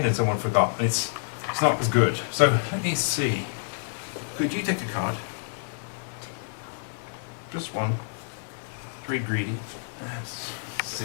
and someone forgot, and it's not as good. So let me see. Could you take a card? Just one. Very greedy. Let's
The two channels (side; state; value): right; silent; digital silence